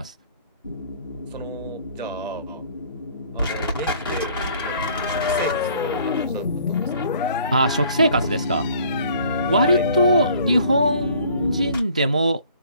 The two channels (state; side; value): inverted; both; correlation -0.57